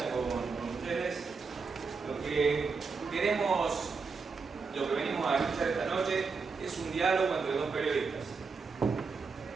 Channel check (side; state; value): left; quieter; 4.9 dB